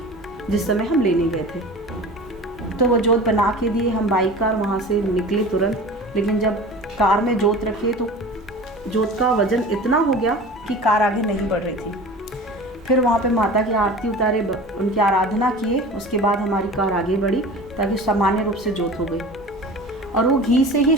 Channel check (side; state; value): both; normal; correlation 0.37